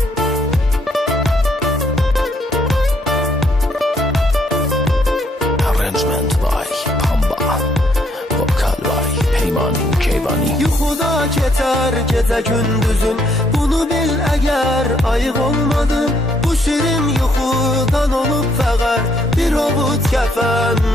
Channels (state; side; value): normal; both; correlation 0.70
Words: yuxuda keçər gecə gündüzün, bunu bil əgər ayıq olmadın. Bu şirin yuxudan olub fəqər bir ovud kəfən,